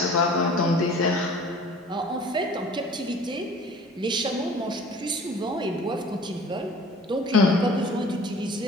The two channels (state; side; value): normal; both; correlation 0.47